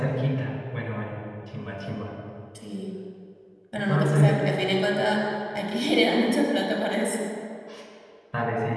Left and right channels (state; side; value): identical; both; correlation 1.00